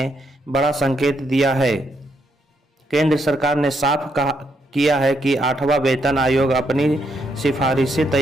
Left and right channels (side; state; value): both; normal; correlation 0.77